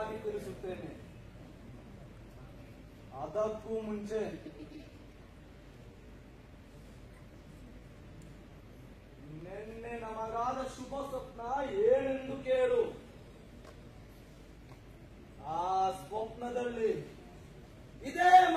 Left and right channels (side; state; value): both; identical; correlation 1.00